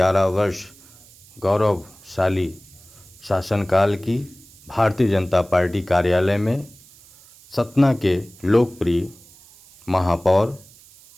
वर्ष गौरवशाली शासनकाल की भारतीय जनता पार्टी कार्यालय में सतना के लोकप्रिय महापौर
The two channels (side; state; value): right; noise; hiss, 25 dB below the sound